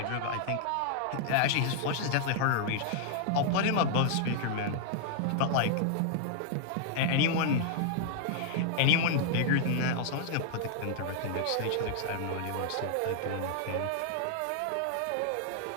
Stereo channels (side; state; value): both; different; correlation -0.01